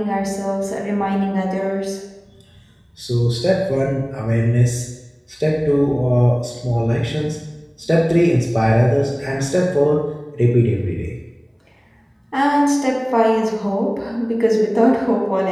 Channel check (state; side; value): identical; both; correlation 1.00